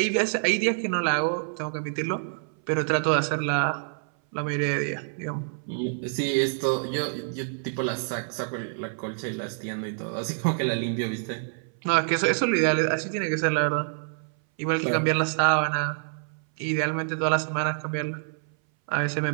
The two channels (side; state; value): left; silent; 59 dB below the other